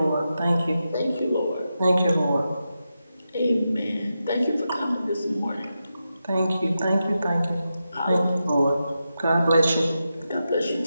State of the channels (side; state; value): both; inverted; correlation -0.89